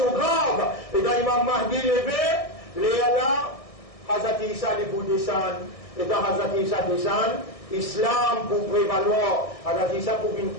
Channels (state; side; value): late; right; 1.6 ms